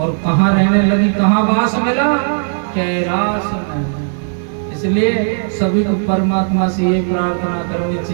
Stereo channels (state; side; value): silent; left; digital silence